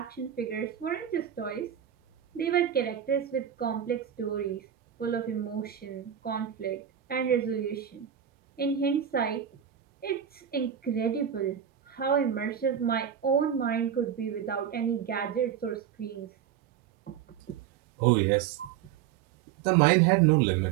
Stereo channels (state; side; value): quieter; left; 9.4 dB